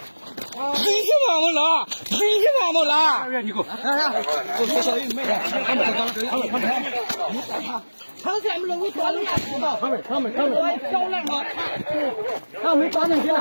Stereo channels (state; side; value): inverted; both; correlation -1.00